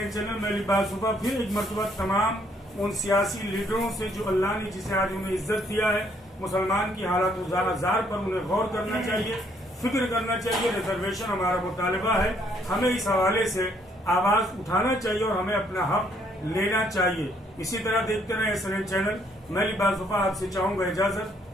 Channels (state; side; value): normal; both; correlation 0.68